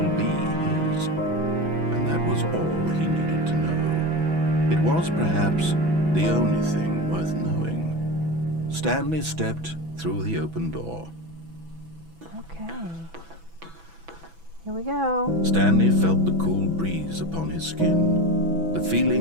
be his. And that was all he needed to know. It was perhaps the only thing worth knowing. Stanley stepped through the open door. Okay. Here we go. Stanley felt the cool breeze upon his skin, the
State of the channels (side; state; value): left; late; 6.0 ms